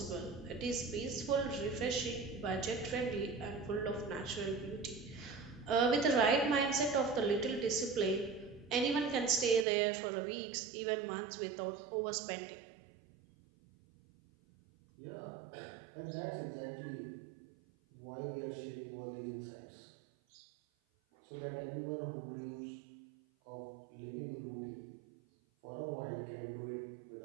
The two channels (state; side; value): drops out; left; at 9.7 s